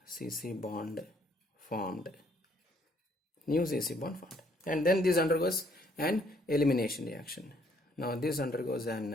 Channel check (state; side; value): normal; both; correlation 0.66